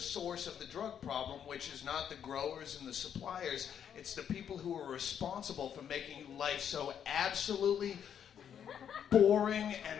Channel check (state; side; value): quieter; right; 8.7 dB